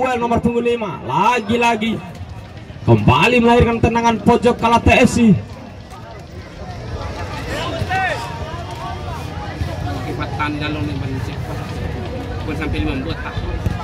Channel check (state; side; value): identical; both; correlation 1.00